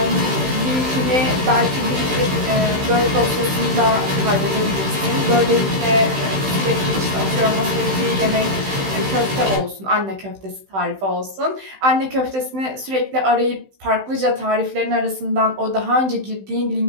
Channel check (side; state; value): left; late; 15 ms